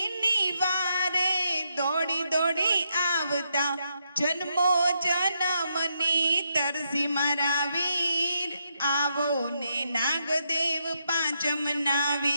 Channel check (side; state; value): both; inverted; correlation -0.79